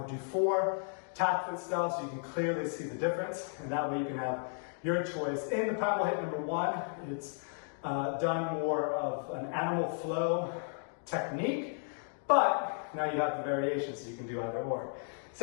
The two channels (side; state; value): right; silent; 55 dB below the other